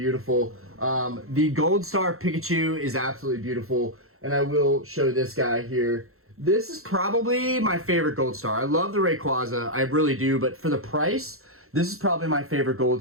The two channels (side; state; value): left; late; 0.62 ms